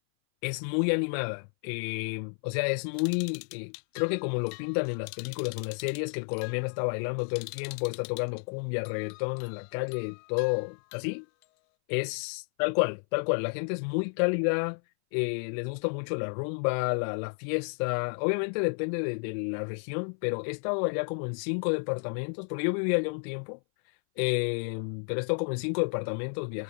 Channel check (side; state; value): right; silent; 57 dB below the other